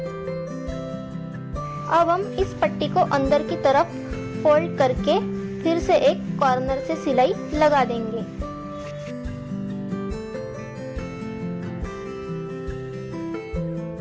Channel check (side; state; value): both; identical; correlation 1.00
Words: अब हम इस पट्टी को अंदर की तरफ फोल्ड करके फिर से एक कॉर्नर से सिलाई लगा देंगे।